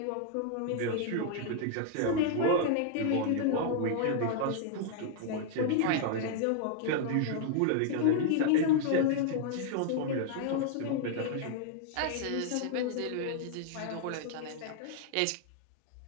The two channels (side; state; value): both; different; correlation 0.00